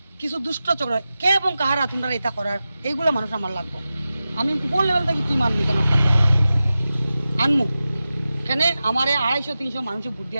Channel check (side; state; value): both; inverted; correlation -0.94